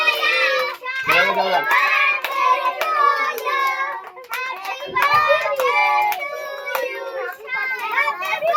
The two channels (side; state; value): both; identical; correlation 1.00